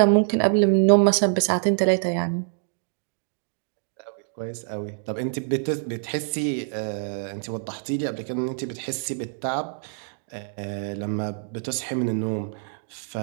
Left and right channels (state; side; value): silent; left; digital silence